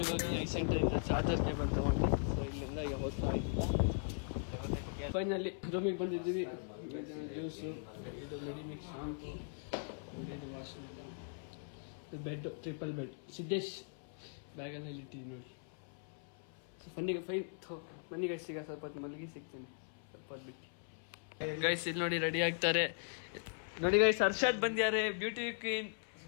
ಹೋಗಿ ಐಸೆಂಟರಿಂದ ಚಾರ್ಜರ್ ಕೇಬಲ್ ತಗೊಂಡು ಸೊ ಇಲ್ಲಿಂದ ಈಗ ಹೋಗ್ತಾ ಇದ್ದಿಲ್ಲ. ಫೈನಲಿ ರೂಮಿಗೆ ಬಂದಿದ್ದೀವಿ. ಜ್ಯೂಸು, ಇದು ಮೆಡಿಮಿಕ್ಸ್ ಶಾಂಪು, ನೋಡಿ ಇದು ವಾಶ್ರೂಮ್, ಇದು ಬೆಡ್, ಟ್ರಿಪಲ್ ಬೆಡ್. ಸಿದ್ದೇಶ್ ಬ್ಯಾಗಲ್ಲಿ ಇಟ್ಟಿದ್ದೀವಿ ನೋಡಿ. ಸೊ ಬನ್ನಿ ಗೈಸ್, ಈಗ ಸ್ವಲ್ಪ ಹೊತ್ತು ಮಲಗಿ ಸಿಗ್ತೀನಿ, ಸ್ವಲ್ಪ ಹೊತ್ತು ಬಿಟ್ಟು. ಗೈಸ್ ಇಲ್ಲಿ ನೋಡಿ ರೆಡಿ ಆಗ್ತಾರೆ. ನೋಡಿ ಗೈಸ್, ಹರ್ಷದ್ ಬಂದ್ಯಾರೆ, ಬ್ಯೂಟಿ ಕ್ವೀನ್.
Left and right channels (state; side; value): silent; right; 52 dB below the other